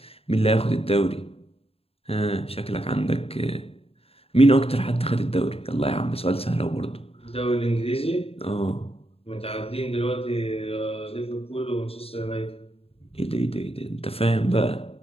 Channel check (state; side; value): late; right; 0.28 ms